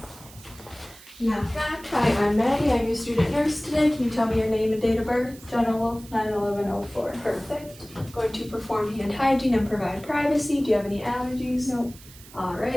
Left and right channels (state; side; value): noise; right; hiss, 20 dB below the sound